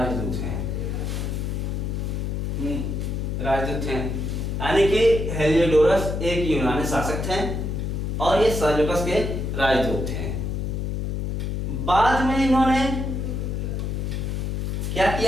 हैं। राजदूत हैं, यानी कि हेलियोडोरस एक यूनानी शासक थे और ये सेल्यूकस के राजदूत थे। बाद में इन्होंने क्या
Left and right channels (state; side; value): noise; left; hum, 2 dB below the sound